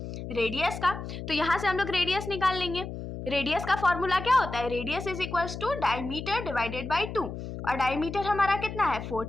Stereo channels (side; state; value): left; noise; hum, 8 dB below the sound